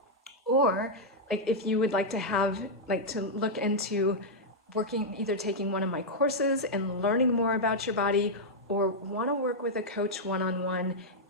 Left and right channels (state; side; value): normal; both; correlation -0.05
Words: or if you would like to to look into either taking one of my courses and learning more about your body, or want to work with a coach one-on-one